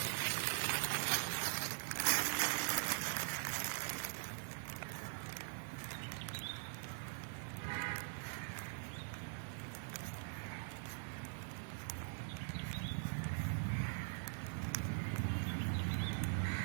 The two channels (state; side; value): silent; left; digital silence